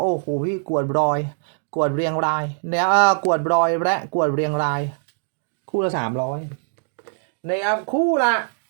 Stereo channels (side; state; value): left; silent; digital silence